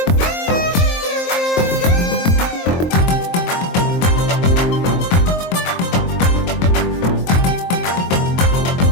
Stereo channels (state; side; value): late; right; 23 ms